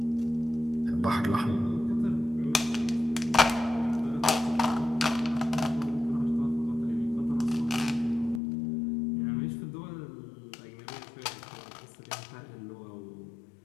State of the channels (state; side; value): drops out; right; at 8.4 s